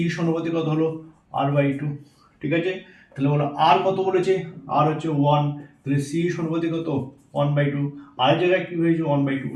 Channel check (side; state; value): both; identical; correlation 1.00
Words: সমানুপাতিক কত হলো? আর বাই টু। ঠিক আছে, তাহলে বলো আর কত বলেছে? আর হচ্ছে 1, তাহলে সি সমানুপাতিক কত? 1 বাই টু। আর জায়গায় কি হয়েছে? 1 বাই টু